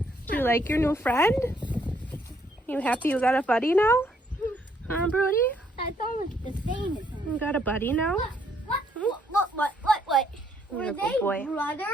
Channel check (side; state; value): both; normal; correlation 0.69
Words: Do you like your new friend? You happy you got a buddy now? Huh, Brody? That's almost the same as him. You got a buddy now? What? Were You're a they good boy.